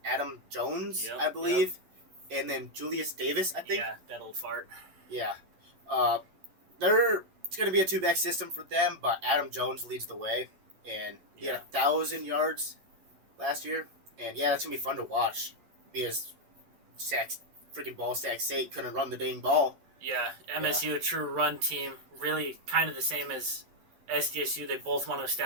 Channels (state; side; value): late; left; 11 ms